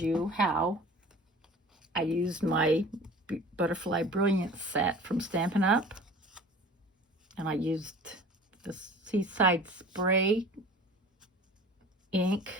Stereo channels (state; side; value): normal; both; correlation 0.43